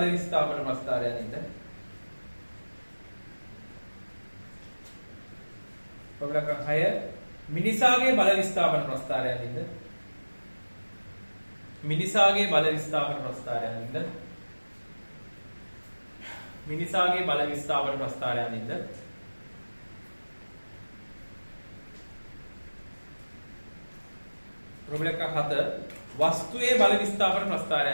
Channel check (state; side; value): inverted; both; correlation -1.00